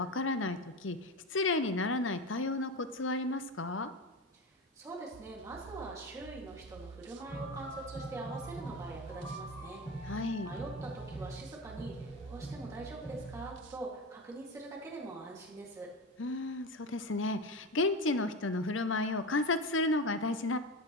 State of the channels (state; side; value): normal; both; correlation 0.23